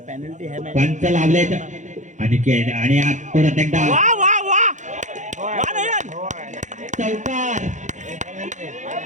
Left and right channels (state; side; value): late; left; 0.35 ms